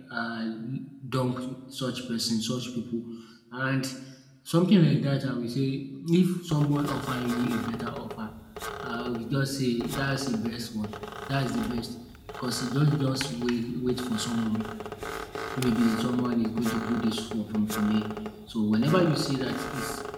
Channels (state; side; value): identical; both; correlation 1.00